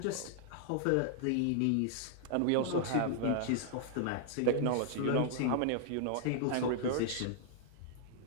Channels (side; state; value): both; different; correlation -0.01